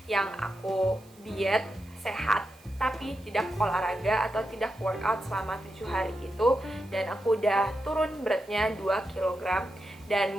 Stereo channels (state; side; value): noise; right; hiss, 28 dB below the sound